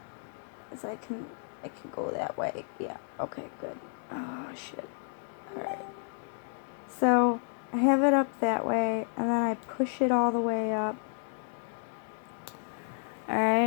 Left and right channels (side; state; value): right; silent; digital silence